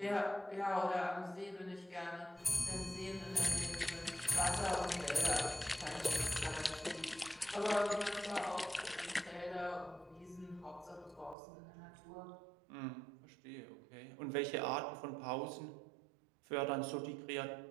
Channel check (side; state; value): left; drops out; at 11.4 s